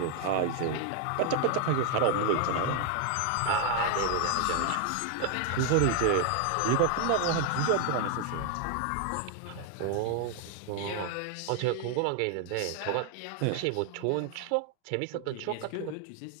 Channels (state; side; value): different; both; correlation 0.00